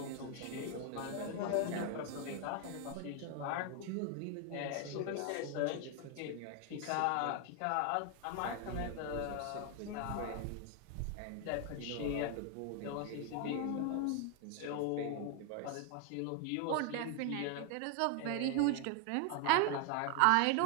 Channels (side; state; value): both; different; correlation 0.00